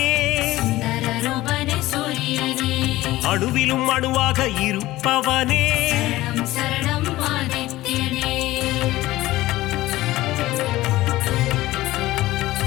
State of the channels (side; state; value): right; quieter; 17.2 dB